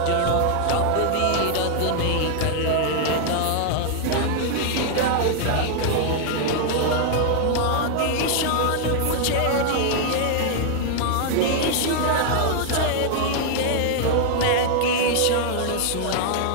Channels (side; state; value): both; different; correlation 0.00